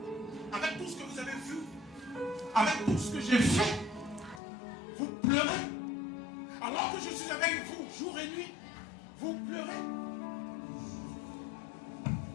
Avec tout ce que vous avez vu, avec tout ce que j'ai fait,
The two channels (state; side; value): drops out; right; at 4.4 s